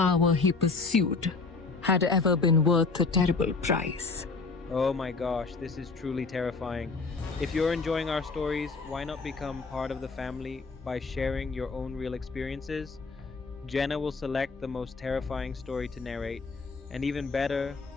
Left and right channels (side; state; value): right; quieter; 4.2 dB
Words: he pursued had ever been worth the terrible price. Oh my gosh, this is truly terrifying. If you're enjoying our stories, why not become part of the family by sharing your own real experiences? Jenna will select the most terrifying story to narrate, and even better,